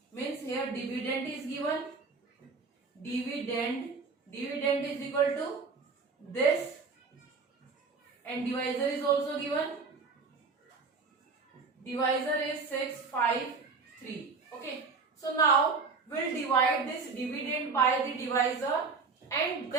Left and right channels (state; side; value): quieter; left; 4.6 dB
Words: means here dividend is given. Dividend is equal to this, and divisor is also given. Divisor is 653. Okay. So now we'll divide this dividend by the divisor, and